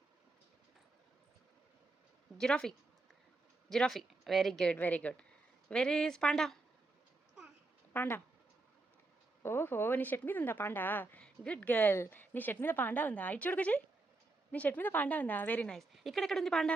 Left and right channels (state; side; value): quieter; left; 3.2 dB